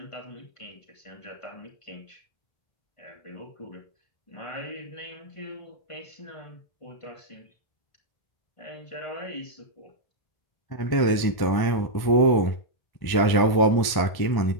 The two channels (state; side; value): late; right; 1.1 ms